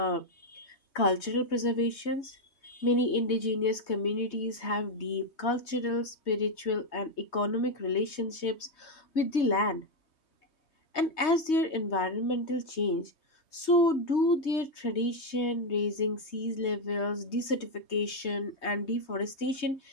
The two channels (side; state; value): right; late; 3.2 ms